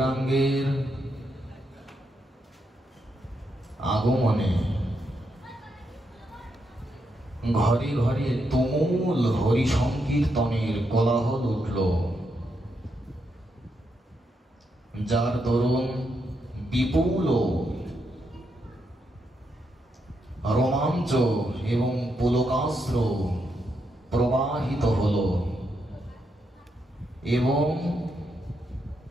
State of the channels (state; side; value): normal; both; correlation 0.81